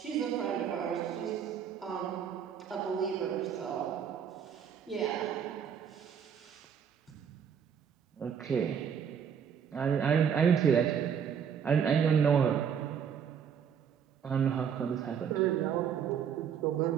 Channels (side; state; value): left; quieter; 7.7 dB